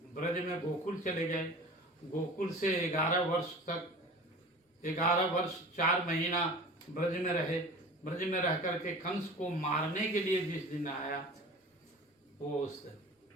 ब्रज में, गोकुल चले गए, गोकुल से 11 वर्ष तक, 11 वर्ष 4 महीना ब्रज में रहे। ब्रज में रह करके कंस को मारने के लिए जिस दिन आया, वो उस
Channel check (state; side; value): normal; both; correlation 0.39